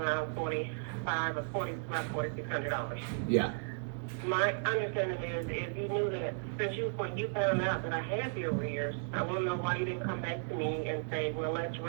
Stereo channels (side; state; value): left; silent; digital silence